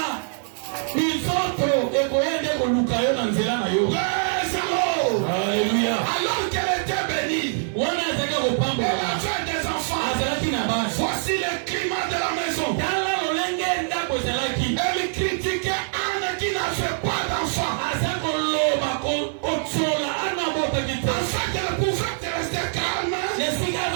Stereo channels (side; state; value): left; silent; 63 dB below the other